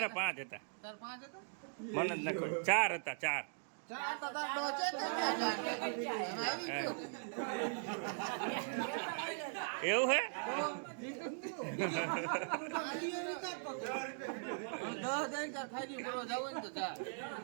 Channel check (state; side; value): silent; left; digital silence